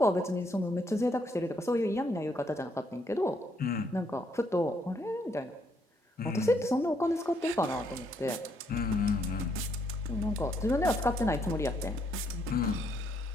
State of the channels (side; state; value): both; normal; correlation 0.72